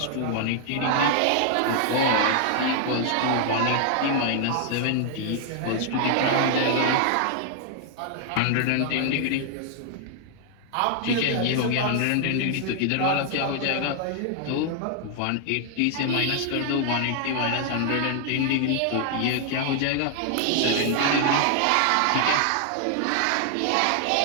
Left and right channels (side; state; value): both; different; correlation 0.00